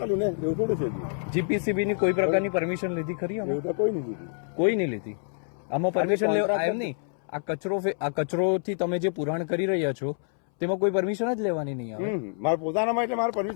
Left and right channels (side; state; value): right; silent; 60 dB below the other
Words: ને એવું થોડું છે. જીપીસીબી ની કોઈ પ્રકારની પરમિશન લીધી ખરી? એવું તો કોઈ નહીં લીધી. કોઈ નહીં લીધી. આમાં પરમિશન લેવા એમ નહીં. આ કચરોથી તમે જે પુરાણ કરી રહ્યા છો તેમાં કોઈ પરમિશન જ લેવાની નહીં આવે. મારા પોતાનામાં એટલે મારે